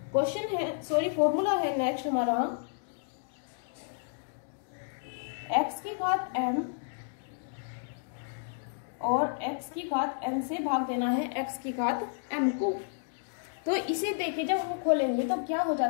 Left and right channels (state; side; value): silent; right; digital silence